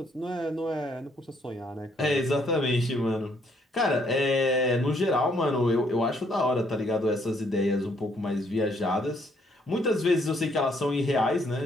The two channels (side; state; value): both; normal; correlation 0.69